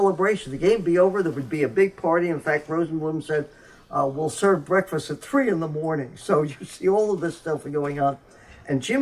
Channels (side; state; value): both; identical; correlation 1.00